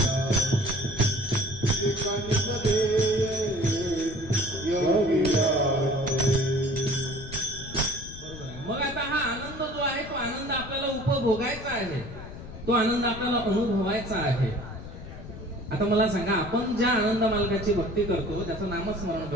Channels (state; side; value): noise; left; rumble, 13 dB below the sound